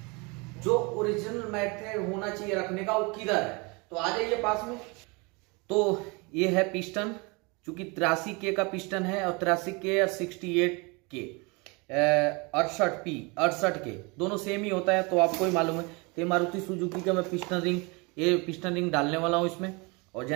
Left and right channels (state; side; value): quieter; left; 28.5 dB